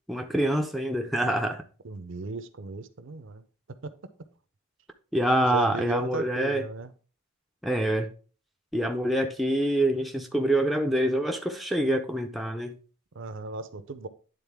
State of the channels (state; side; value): normal; both; correlation 0.75